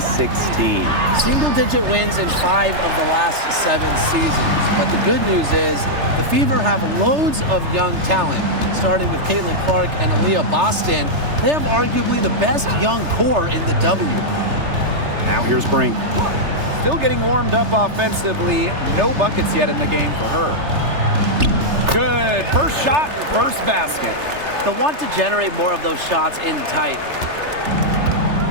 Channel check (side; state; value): left; late; 3.3 ms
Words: Single-digit wins in 5 of the last 7 seasons. But the good news is the Fever have loads of young talent, starting with Caitlin Clark and Aaliyah Boston. They have arguably the best young core in the W. Now here's Brink. Still getting warmed up offensively. No buckets yet in the game for her. Good. First shot, first basket. They'll want to generate more of those shots in tight.